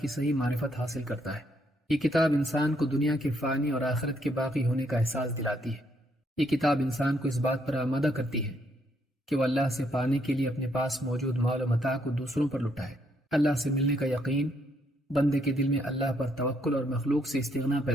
صحیح معرفت حاصل کرتا ہے۔ یہ کتاب انسان کو دنیا کے فانی اور آخرت کے باقی ہونے کا احساس دلاتی ہے۔ یہ کتاب انسان کو اس بات پر آمادہ کرتی ہے کہ وہ اللہ سے پانے کے لیے اپنے پاس موجود مال و متاع کو دوسروں پر لٹائے۔ اللہ سے ملنے کا یقین بندے کے دل میں اللہ پر توکل اور مخلوق سے استغنا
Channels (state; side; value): normal; both; correlation 0.73